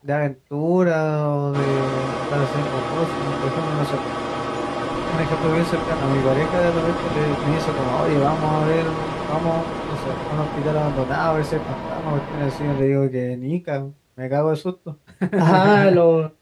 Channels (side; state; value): both; identical; correlation 1.00